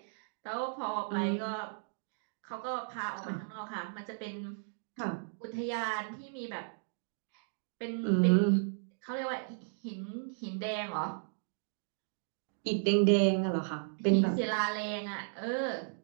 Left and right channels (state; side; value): silent; left; digital silence